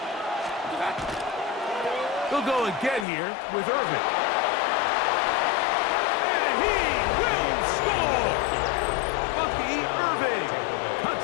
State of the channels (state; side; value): drops out; right; at 3.1 s